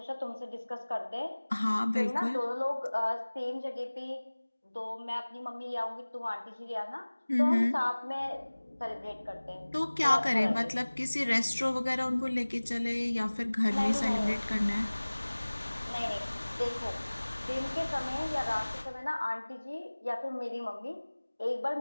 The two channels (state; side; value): inverted; both; correlation -1.00